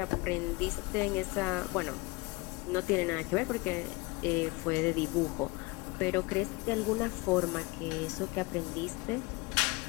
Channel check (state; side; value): quieter; right; 24.7 dB